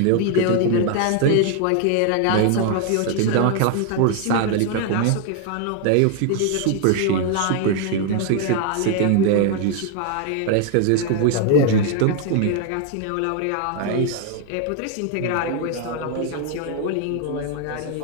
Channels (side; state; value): both; different; correlation 0.00